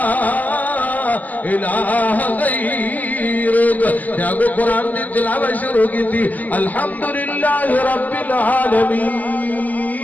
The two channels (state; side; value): late; right; 0.081 ms